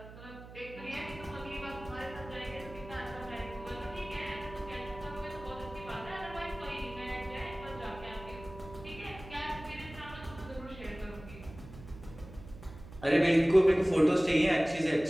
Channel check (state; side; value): noise; right; hum, 16 dB below the sound